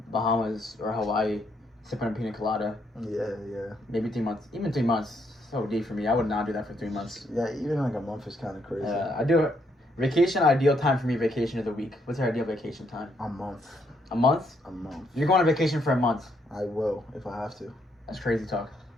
Bahamas or Hawaii, sipping a pina colada. Yeah. Maybe 3 months. Even 3 months. So deep for me. I would not do that for 3 months. Yeah, even like a month is kind of crazy. I do. Vacation, ideal time for me, vacation is a week. What's your ideal vacation time? A month. A month? A month. You're going on vacation for a month. I will, if I have to. That's crazy talk.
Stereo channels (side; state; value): both; normal; correlation 0.74